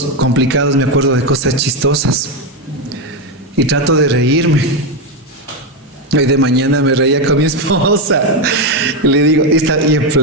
complicados me acuerdo de cosas chistosas y trato de reírme. Hoy de mañana me reía con mi esposa y le digo, está y en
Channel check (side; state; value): both; normal; correlation 0.08